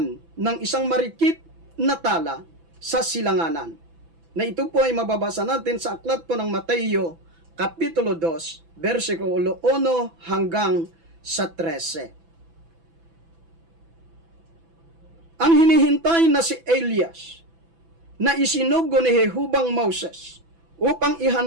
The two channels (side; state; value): left; late; 6.0 ms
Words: ng isang marikit na tala sa silanganan. Na ito po ay mababasa natin sa aklat po ng Mateo, Kapitulo 2, versikulo 1 hanggang sa 13. Ang hinihintay na si Elias, na isinugo ni Jehubang Moses, upang